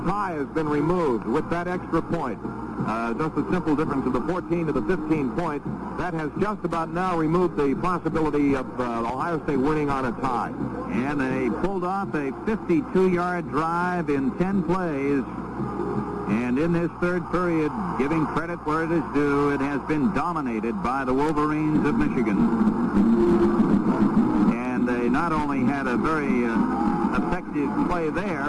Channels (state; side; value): identical; both; correlation 1.00